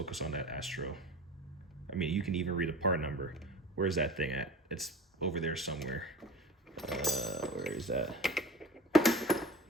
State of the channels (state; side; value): normal; both; correlation 0.36